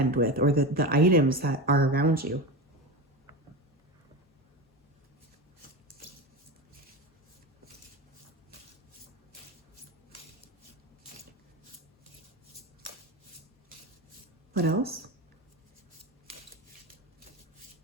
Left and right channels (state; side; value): normal; both; correlation 0.23